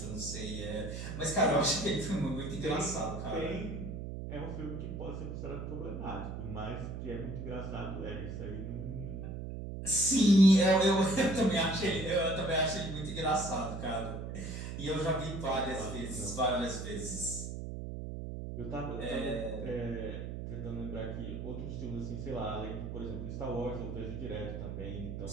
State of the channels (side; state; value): right; noise; hum, 6 dB below the sound